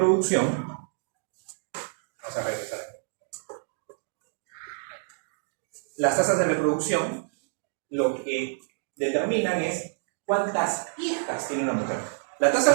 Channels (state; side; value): silent; left; digital silence